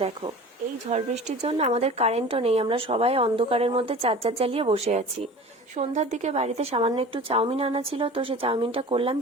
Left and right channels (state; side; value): normal; both; correlation 0.39